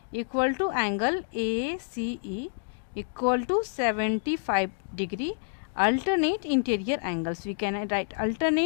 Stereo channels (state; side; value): silent; right; digital silence